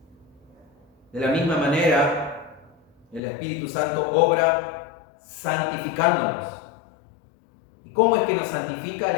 De la misma manera, el Espíritu Santo obra santificándonos. ¿Y cómo es que nos santifica el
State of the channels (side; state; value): right; drops out; at 3.2 s